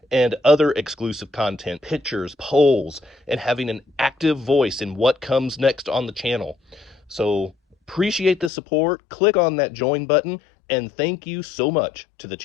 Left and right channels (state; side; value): drops out; right; at 8.5 s